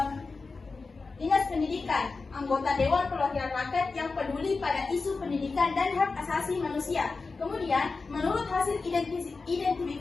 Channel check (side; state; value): right; quieter; 4.1 dB